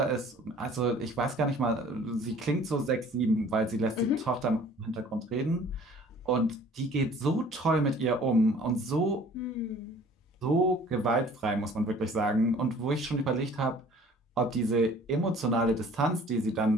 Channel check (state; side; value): normal; both; correlation 0.51